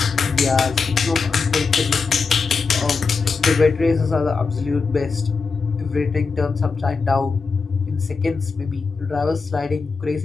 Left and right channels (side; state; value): right; quieter; 4.7 dB